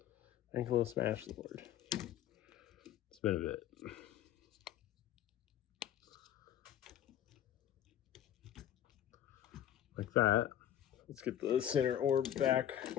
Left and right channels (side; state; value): right; quieter; 11.1 dB